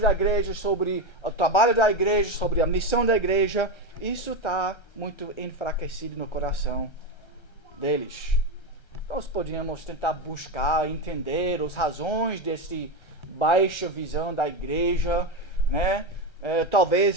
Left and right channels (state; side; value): late; right; 1.3 ms